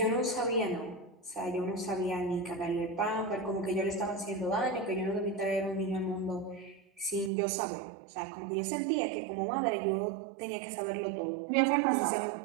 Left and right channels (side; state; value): left; drops out; at 7.3 s